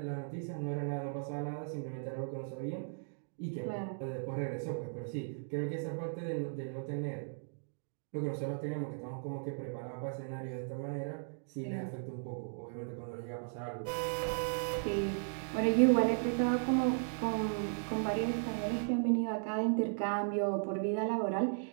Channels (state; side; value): silent; left; digital silence